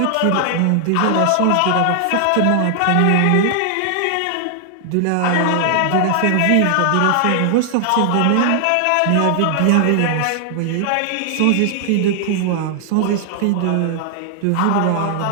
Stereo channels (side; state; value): both; different; correlation 0.00